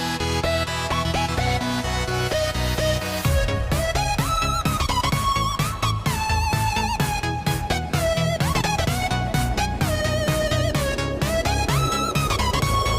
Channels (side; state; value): both; identical; correlation 1.00